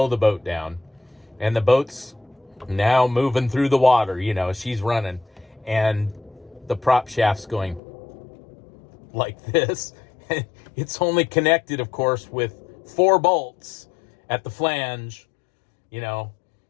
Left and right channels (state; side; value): drops out; right; at 7.8 s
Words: the boat down. And the boat's now moving through the water, she's running, and the prop shaft's going like this. It's only connected, of course, with 4 bolts at the flange, and